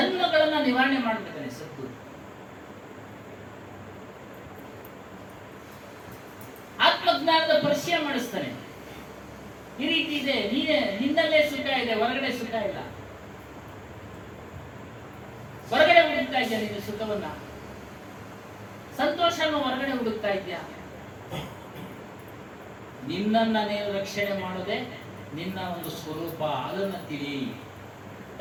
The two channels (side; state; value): both; identical; correlation 1.00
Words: ನಿವಾರಣೆ ಮಾಡ್ಬೇಕಾನೆ ಸದ್ಗುರು. ಆತ್ಮಜ್ಞಾನದ ಪರಿಚಯ ಮಾಡಿಸ್ತಾನೆ. ಈ ರೀತಿ ಇದೆ, ನಿನ್ನಲ್ಲೇ ಸುಖ ಇದೆ, ಹೊರಗಡೆ ಸುಖ ಇಲ್ಲ. ಹೊರಗಡೆ ಹುಡುಕ್ತಾ ಇದ್ಯಾ ನೀನು ಸುಖವನ್ನ, ಸಂತೋಷವನ್ನು ಹೊರಗಡೆ ಹುಡುಕ್ತಾ ಇದ್ಯಾ? ನಿನ್ನನ್ನ ನೀನು ರಕ್ಷಣೆ ಮಾಡೋದೇ ನಿನ್ನ ಒಂದು ಸ್ವರೂಪ, ಅದನ್ನ ತಿಳಿ.